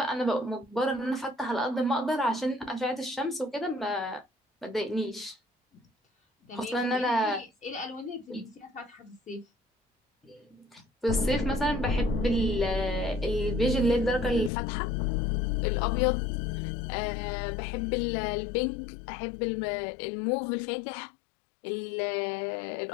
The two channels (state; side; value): drops out; right; at 14.5 s